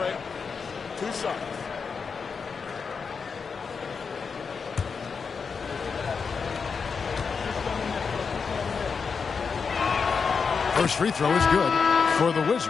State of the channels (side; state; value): right; quieter; 5.5 dB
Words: 2 shots. First free throw is good for the